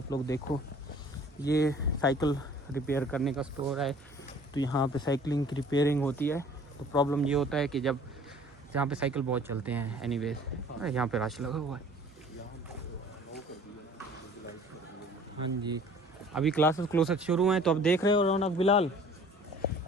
लोग देखो। ये साइकिल रिपेयर करने का स्टोर है। तो यहाँ पे साइकिलिंग की रिपेयरिंग होती है। तो प्रॉब्लम ये होता है कि जब जहाँ पे साइकिल बहुत चलते हैं एनीवेज, यहाँ पे रश लगा हुआ है। हाँ जी, अभी क्लासेस क्लोसेस शुरू हैं। तो अब देख रहे हो रौनक बिलाल,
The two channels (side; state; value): both; normal; correlation 0.50